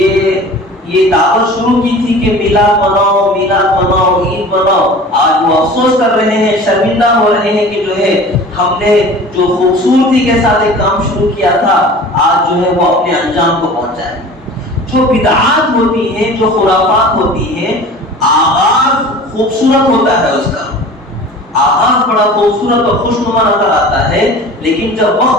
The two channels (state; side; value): normal; both; correlation 0.41